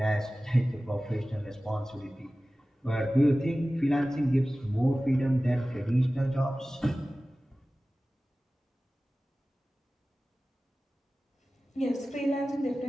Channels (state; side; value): normal; both; correlation 0.97